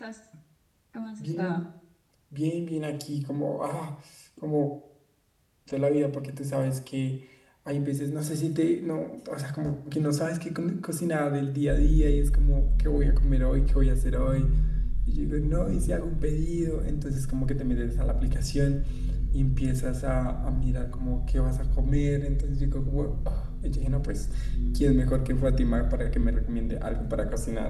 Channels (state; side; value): identical; both; correlation 1.00